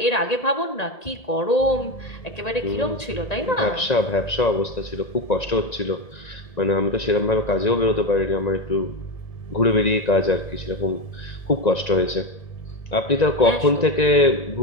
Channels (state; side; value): late; right; 1.9 ms